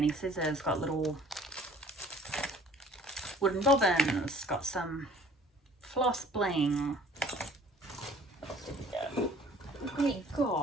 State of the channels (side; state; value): both; normal; correlation 0.53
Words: scissors, got little wooden bobbins, got some floss bling. We